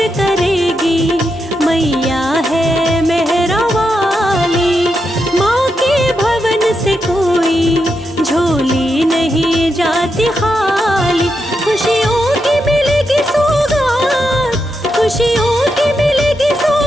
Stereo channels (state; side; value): normal; both; correlation 0.84